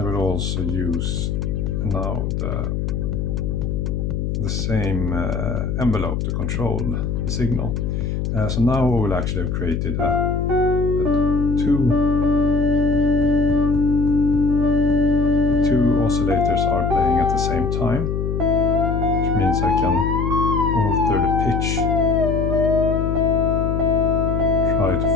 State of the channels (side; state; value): left; noise; hum, 1 dB below the sound